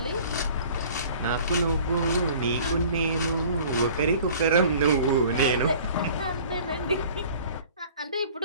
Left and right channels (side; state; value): both; inverted; correlation -0.48